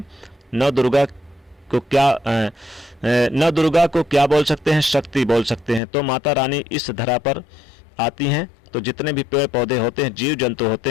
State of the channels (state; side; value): drops out; right; at 5.8 s